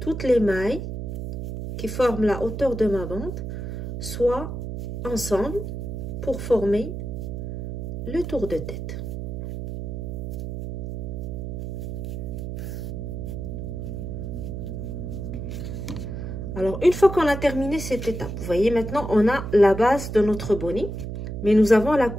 les mailles qui forment la hauteur de ma bande soient ensemble pour former le tour de tête. Alors, une fois qu'on a terminé cette étape, vous voyez, maintenant, on a la base de notre bonnet, mais nous avons la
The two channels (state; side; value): noise; right; hum, 6 dB below the sound